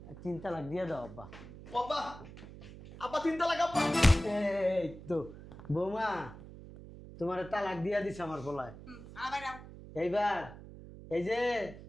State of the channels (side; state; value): right; noise; hum, 15 dB below the sound